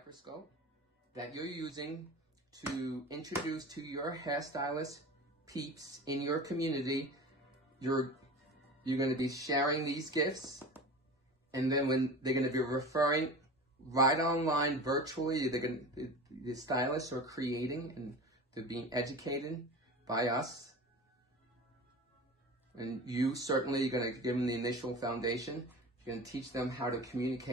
that you're using to introduce to your hairstylist peeps in your community. You're going to be sharing these gifts, and then when they're going to be referring right online virtually, the stylists are creating and they're being educated by us. And you certainly are going to give them the initial foundation. You're going to teach them how to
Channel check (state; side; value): normal; both; correlation 0.34